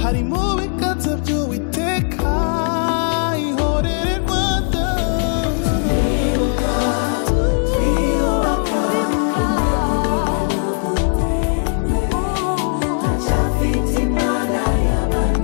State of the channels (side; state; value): right; silent; 56 dB below the other